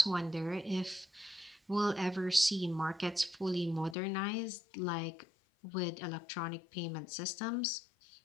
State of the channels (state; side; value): drops out; right; at 4.0 s